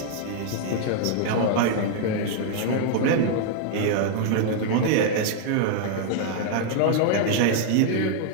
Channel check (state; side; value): different; both; correlation 0.00